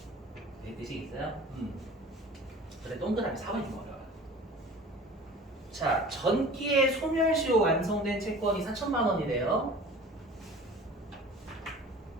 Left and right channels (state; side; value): normal; both; correlation 0.42